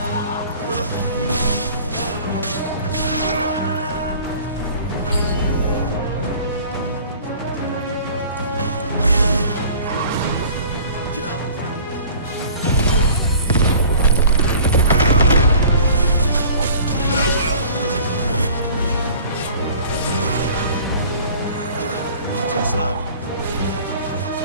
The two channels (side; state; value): both; inverted; correlation -0.47